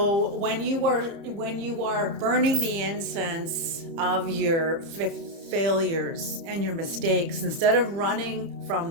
when you are burning the incense of your failures and your mistakes, instead of running from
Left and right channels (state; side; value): late; left; 30 ms